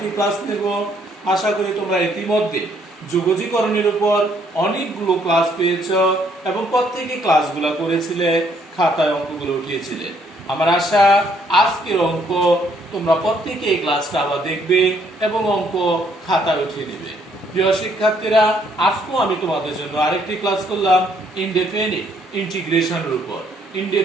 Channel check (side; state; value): both; normal; correlation 0.68